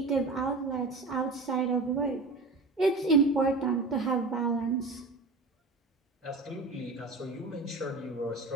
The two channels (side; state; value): left; quieter; 3.5 dB